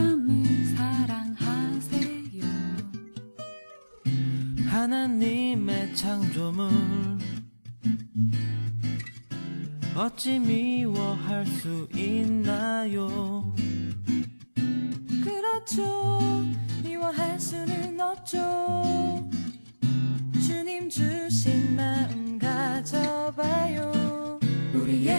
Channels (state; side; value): inverted; both; correlation -1.00